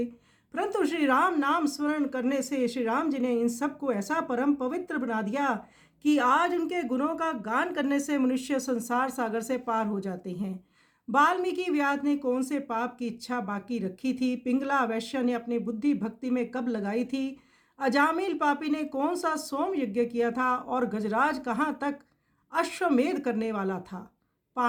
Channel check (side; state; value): both; identical; correlation 1.00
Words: परंतु श्री राम नाम स्मरण करने से श्री राम जी ने इन सब को ऐसा परम पवित्र बना दिया कि आज उनके गुणों का गान करने से मनुष्य संसार सागर से पार हो जाते हैं। वाल्मीकि व्यास ने कौन से पाप की इच्छा बाकी रखी थी? पिंगला वैश्य ने अपनी बुद्धि भक्ति में कब लगाई थी? अजामिल पापी ने कौन सा सोम यज्ञ किया था? और गजराज कहाँ तक अश्वमेध करने वाला था?